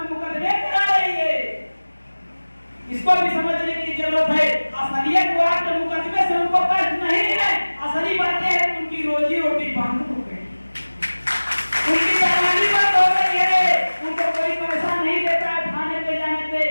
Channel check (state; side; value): inverted; both; correlation -1.00